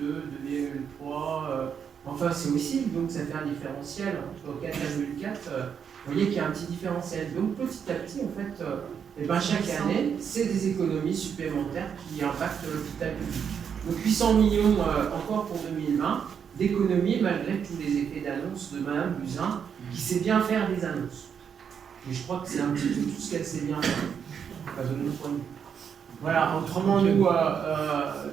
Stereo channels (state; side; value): quieter; left; 7.4 dB